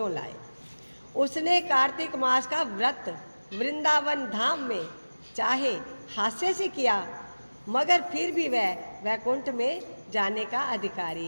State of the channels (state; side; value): inverted; both; correlation -1.00